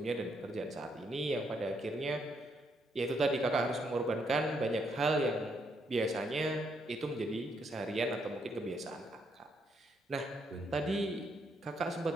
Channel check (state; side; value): normal; both; correlation 0.75